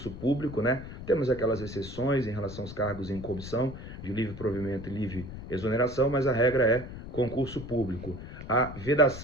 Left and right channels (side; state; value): left; noise; rumble, 11 dB below the sound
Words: público, né? Temos aquelas exceções em relação aos cargos em comissão, de livre provimento e livre exoneração, mas a regra é concurso público. A